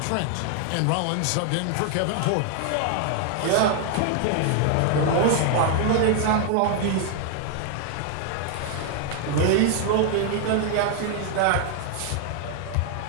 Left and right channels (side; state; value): both; different; correlation 0.00